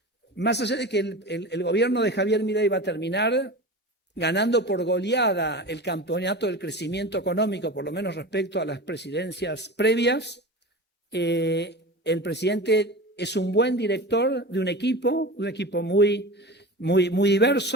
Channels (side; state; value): both; normal; correlation 0.31